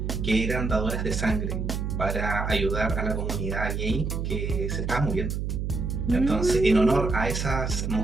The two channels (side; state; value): right; noise; hum, 2 dB below the sound